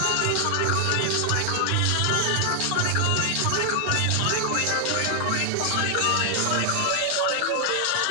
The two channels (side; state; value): both; different; correlation 0.00